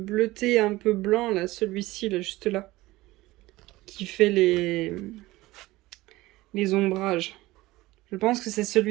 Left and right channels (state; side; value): quieter; left; 18.7 dB